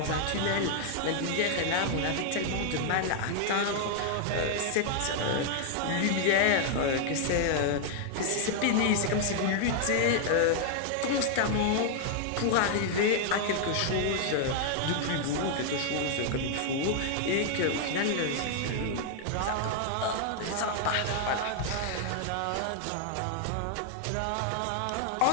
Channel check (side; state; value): both; different; correlation 0.00